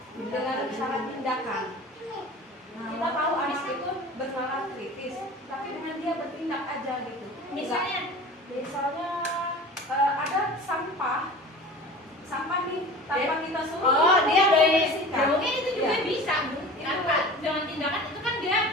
Dengan syarat tindakan. Kita tahu anak itu bernalar kritis, tapi dengan dia bertindak aja gitu. Misalnya ada sampah nih tanpa kita suruh. Oh, dia dari bersihkan. mungkin itu juga Iya. bisa, Bu. Tanpa dengan tindakan itu kan dia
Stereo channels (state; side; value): normal; both; correlation 0.38